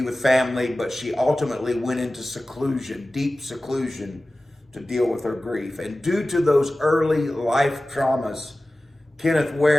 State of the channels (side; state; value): both; normal; correlation 0.96